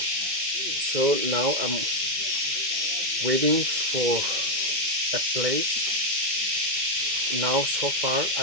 now I'm waiting for a place. Now so far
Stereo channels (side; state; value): left; late; 2.1 ms